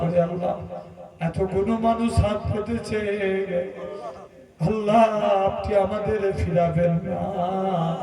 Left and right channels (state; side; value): identical; both; correlation 1.00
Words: আল্লাহ এতগুলো মানুষ হাত পেতেছে, আল্লাহ আপনি আমাদের ফিরাবেন না।